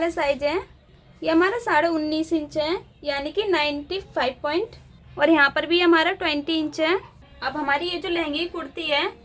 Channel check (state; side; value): identical; both; correlation 1.00